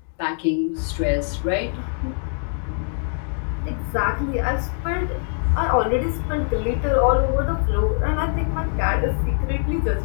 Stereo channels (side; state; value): right; silent; 59 dB below the other